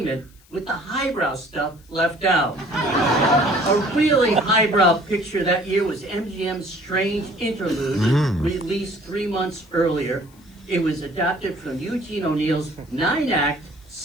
with the highbrow stuff left out. A really highbrow picture that year was MGM's Strange Interlude, released 3 months earlier. It was adapted from Eugene O'Neill's 9-act,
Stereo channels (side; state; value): left; noise; hiss, 29 dB below the sound